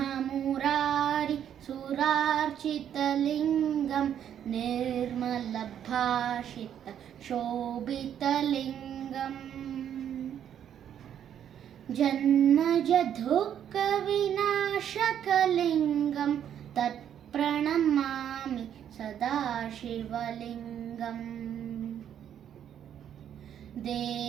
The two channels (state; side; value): quieter; left; 9.6 dB